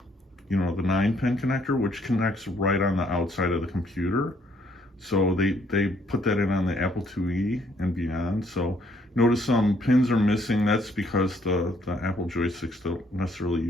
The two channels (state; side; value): normal; both; correlation 0.67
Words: the 9-pin connector, which connects right on the outside of the computer. So they put that in on the Apple IIe and beyond. So notice some pins are missing. That's because the Apple joysticks don't necessarily